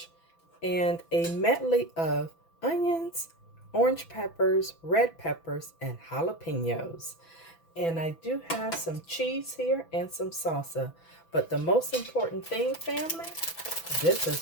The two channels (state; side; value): late; right; 6.0 ms